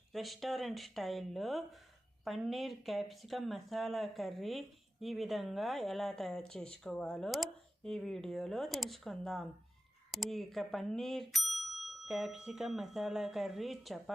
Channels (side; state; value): both; normal; correlation 0.94